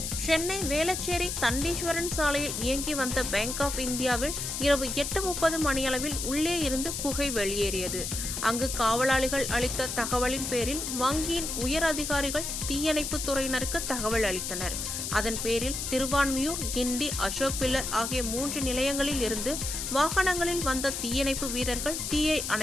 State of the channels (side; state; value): left; noise; hiss, 4 dB below the sound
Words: சென்னை வேளச்சேரி தண்டீஸ்வரன் சாலையில் இயங்கி வந்த பேங்க் ஆஃப் இந்தியாவில் இரவு 8:30 மணியளவில் உள்ளே இருந்து புகை வெளியேறியது. அங்கு காவலாளிகள் அளித்த தகவலின் பேரில் வங்கியின் உயர் அதிகாரிகள் தீயணைப்பு துறையினருக்கு தகவல் அளித்தனர். அதன் பேரில் திருவான்மியூர், கிண்டி, அசோக் பில்லர் ஆகிய 3 நிலையங்களில் இருந்து வாகனங்களில் வந்த தீயணைப்பு வீரர்கள் தீயை